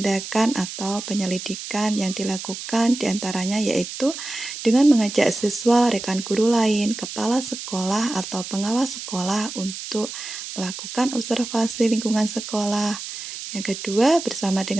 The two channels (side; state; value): right; noise; hiss, 9 dB below the sound